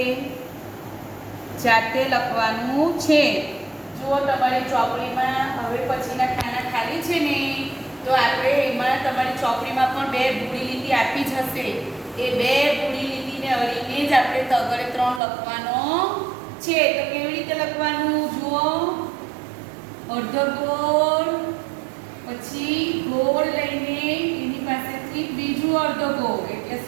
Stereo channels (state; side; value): drops out; left; at 15.2 s